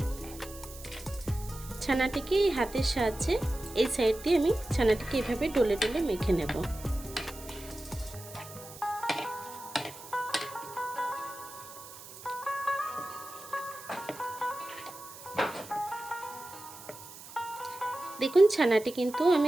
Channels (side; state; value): right; noise; hiss, 16 dB below the sound